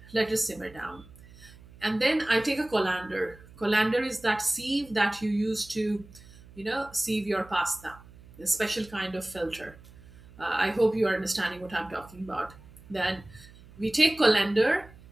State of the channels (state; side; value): noise; right; hum, 22 dB below the sound